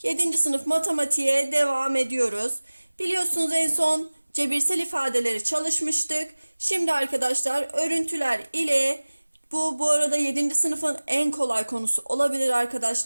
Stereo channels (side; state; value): both; inverted; correlation -1.00